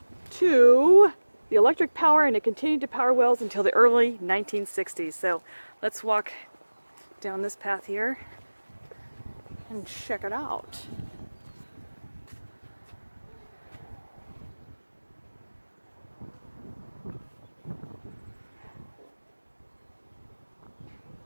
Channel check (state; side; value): inverted; both; correlation -1.00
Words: to the electric power, and it continued to power wells until the early 1960s. So let's walk down this path here and check it out.